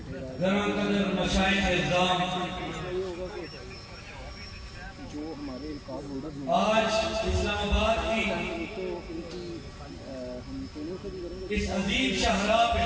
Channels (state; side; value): identical; both; correlation 1.00